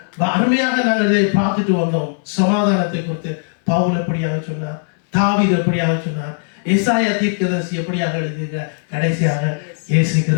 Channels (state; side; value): silent; right; digital silence